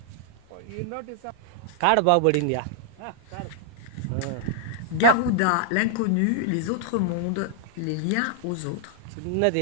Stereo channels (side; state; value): both; different; correlation 0.00